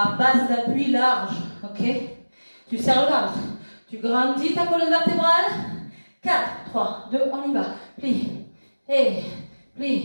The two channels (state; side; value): inverted; both; correlation -1.00